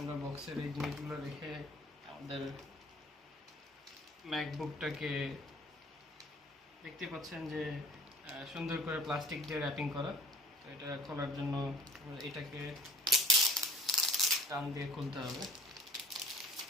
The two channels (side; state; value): both; normal; correlation 0.48